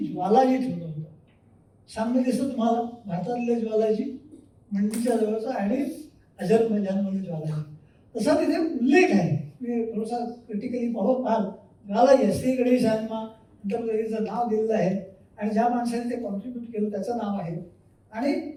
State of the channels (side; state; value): both; identical; correlation 1.00